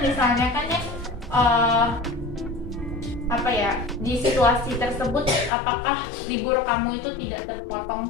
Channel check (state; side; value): drops out; right; at 5.5 s